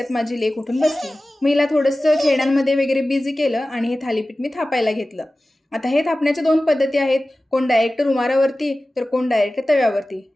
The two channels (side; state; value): both; normal; correlation 0.96